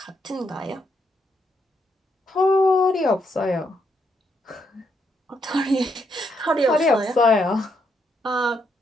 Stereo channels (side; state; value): both; normal; correlation 0.77